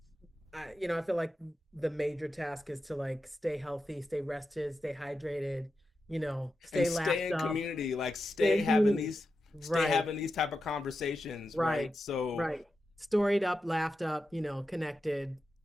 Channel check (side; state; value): both; normal; correlation 0.89